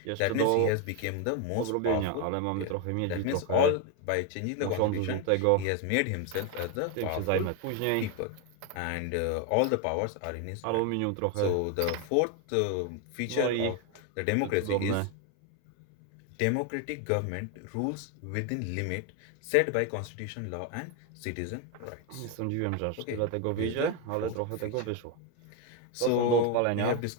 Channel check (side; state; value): both; different; correlation 0.01